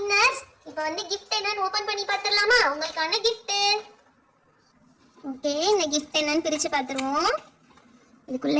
இப்போ வந்து gift என்னன்னு ஓபன் பண்ணி பார்த்துடலாமா? உங்களுக்கான gift. ஓகே, இந்த gift என்னன்னு பிரிச்சு பார்த்துருவோம்.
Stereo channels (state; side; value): identical; both; correlation 1.00